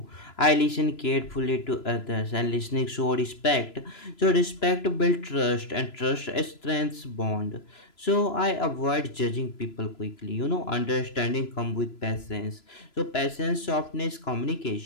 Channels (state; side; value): late; right; 3.0 ms